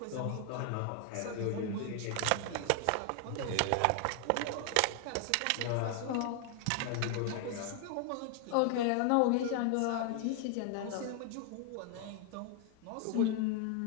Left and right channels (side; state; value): both; different; correlation 0.00